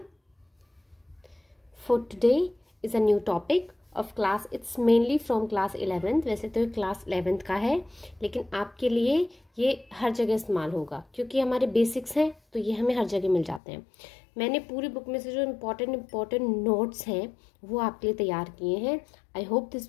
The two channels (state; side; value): drops out; right; at 13.6 s